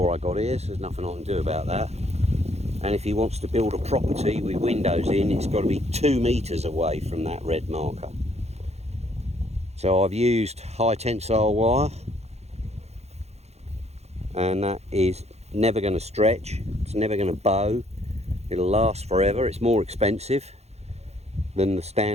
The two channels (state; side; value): late; left; 0.31 ms